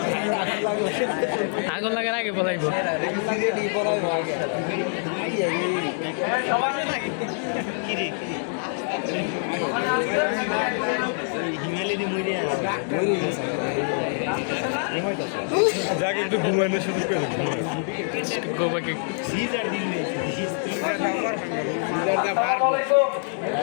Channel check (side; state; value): right; silent; 61 dB below the other